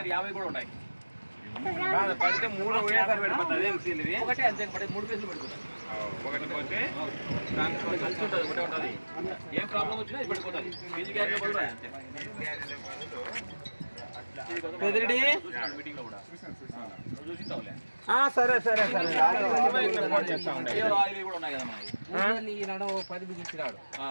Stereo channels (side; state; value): both; inverted; correlation -1.00